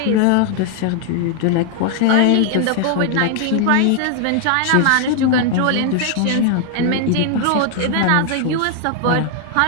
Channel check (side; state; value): both; different; correlation 0.00